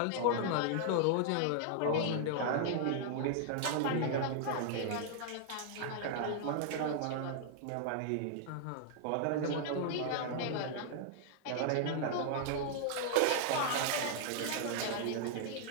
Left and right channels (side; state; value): both; different; correlation -0.01